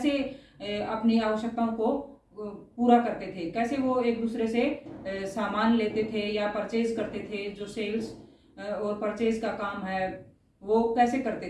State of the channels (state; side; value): identical; both; correlation 1.00